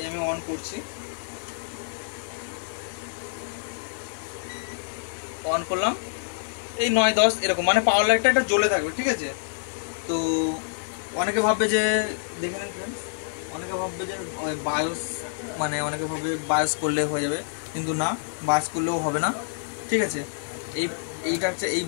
আমি অন করছি, অন করলাম, এই 9-10 এরকম, মানে পাওয়ার লাইটটা একটা জ্বলে থাকবে। ঠিক আছে, তো অনেকে ভাববে যে, দেখে নিন ফ্রেন্ডস, অনেকে ভাববে যে বায়োস, মানে অনেকে ভাববে বায়োস করলে হয়ে যাবে, কিন্তু না, বায়োস করলেও হবে না। ঠিক আছে, এইটা হচ্ছে এই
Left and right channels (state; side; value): silent; right; digital silence